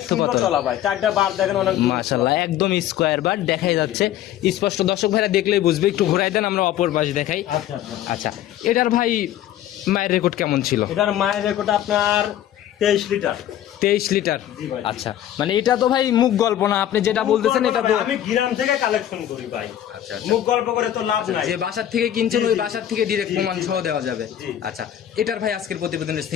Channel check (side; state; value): right; quieter; 11.7 dB